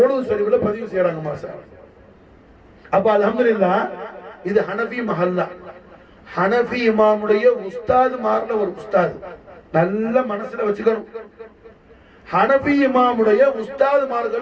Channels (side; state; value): both; identical; correlation 1.00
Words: ஷரீஃப்ல பதிவு செய்யறாங்க மாஷா அல்லாஹ். அப்ப அல்ஹம்துலில்லாஹ் இது ஹனஃபி மஹல்லா. ஹனஃபி இமாமுடைய உஸ்தாது மார்ல ஒரு உஸ்தாது, நல்ல மனசுல வச்சுக்கணும். ஹனஃபி இமாமுடைய உஸ்தாது